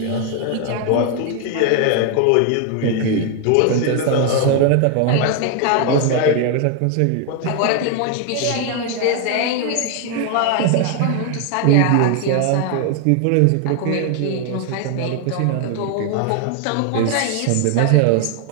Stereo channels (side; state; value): both; different; correlation 0.00